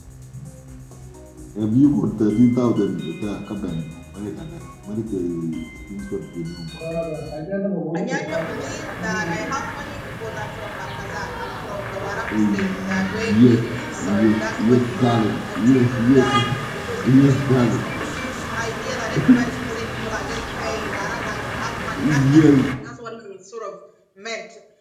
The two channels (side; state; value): both; identical; correlation 1.00